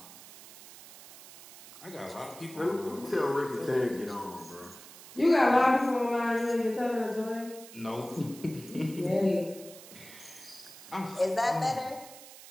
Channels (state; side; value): noise; right; hiss, 17 dB below the sound